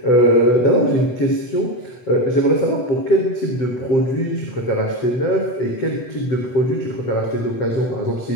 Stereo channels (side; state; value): right; late; 8.0 ms